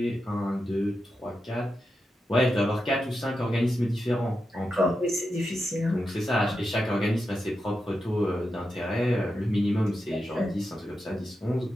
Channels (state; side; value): normal; both; correlation 0.88